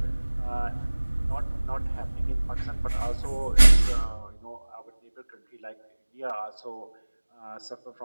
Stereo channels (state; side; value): inverted; both; correlation -1.00